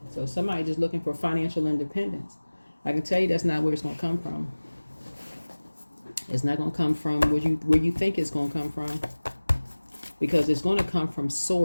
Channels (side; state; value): both; inverted; correlation -1.00